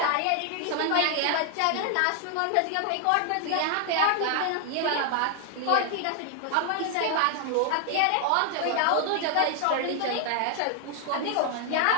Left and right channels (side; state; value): both; different; correlation 0.00